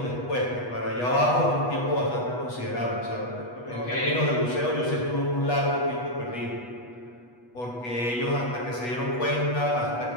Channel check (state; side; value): late; right; 8.2 ms